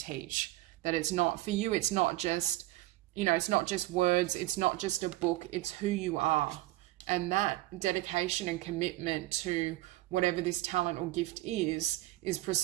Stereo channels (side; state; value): left; quieter; 17.3 dB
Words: that it's not, for you, it's not just, it's not just words, it's not just a book, it's who you are. And that dedication and commitment to whatever this talent or gift is